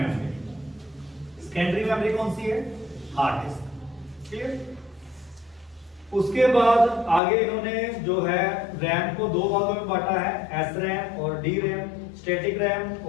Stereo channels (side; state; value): right; drops out; at 7.2 s